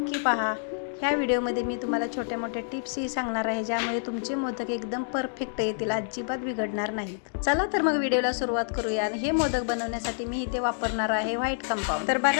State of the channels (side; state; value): right; silent; digital silence